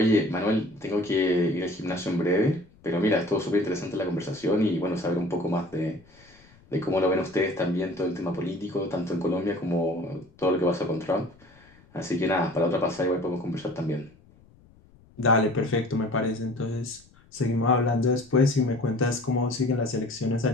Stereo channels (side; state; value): left; noise; rumble, 28 dB below the sound